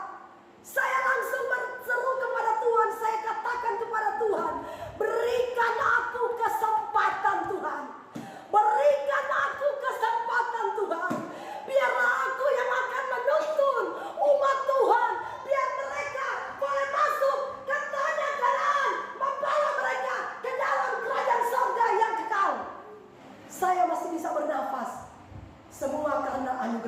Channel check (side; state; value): both; identical; correlation 1.00